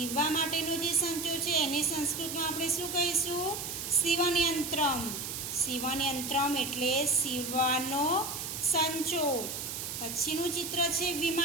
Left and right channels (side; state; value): right; noise; hiss, 5 dB below the sound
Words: માટેનો જે સંચો છે એને સંસ્કૃતમાં આપણે શું કહીશું? સીવનયંત્રમ. સીવનયંત્રમ એટલે સીવવાનો સંચો. પછીનું ચિત્ર છે